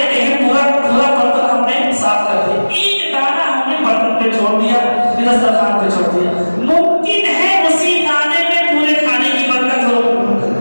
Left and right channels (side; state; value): both; inverted; correlation -1.00